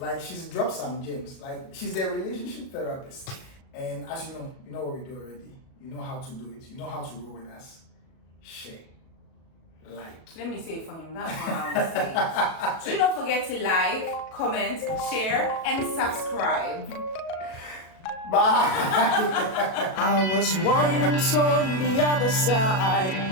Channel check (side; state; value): right; late; 37 ms